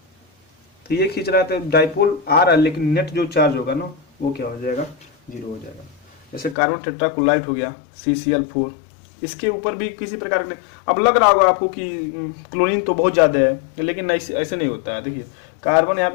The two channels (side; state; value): right; drops out; at 6.6 s